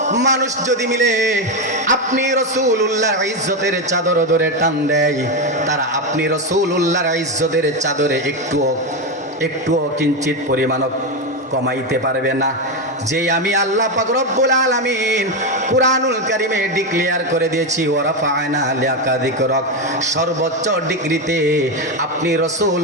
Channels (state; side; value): normal; both; correlation 0.11